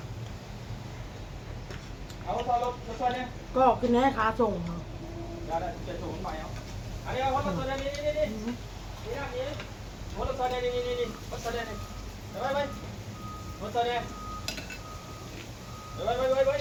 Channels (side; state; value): both; identical; correlation 1.00